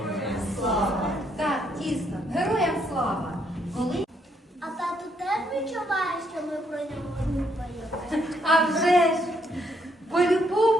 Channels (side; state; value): both; normal; correlation 0.73